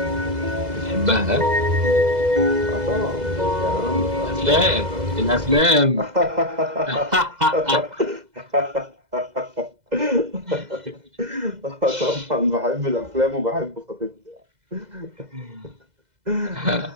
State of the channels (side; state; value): left; late; 2.0 ms